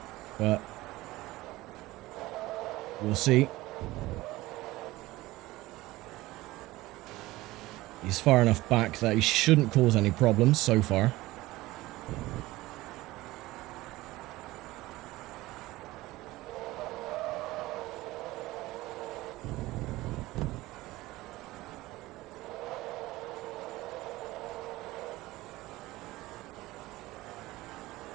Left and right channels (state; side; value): quieter; left; 18.5 dB